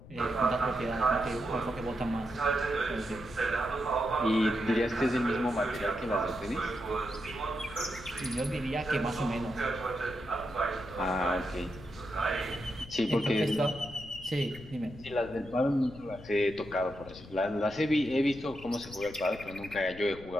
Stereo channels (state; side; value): noise; left; rumble, 17 dB below the sound